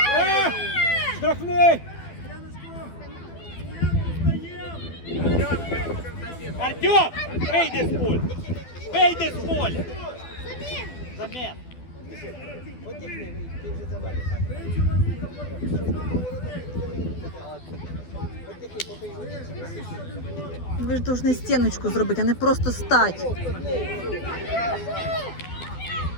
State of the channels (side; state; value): right; late; 12 ms